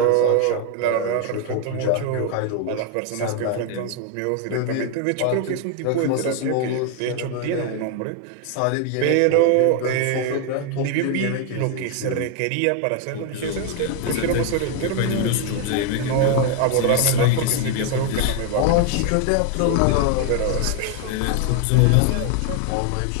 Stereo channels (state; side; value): different; both; correlation 0.00